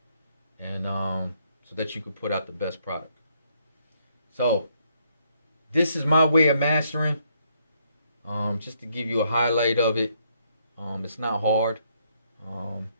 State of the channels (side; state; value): both; inverted; correlation -0.72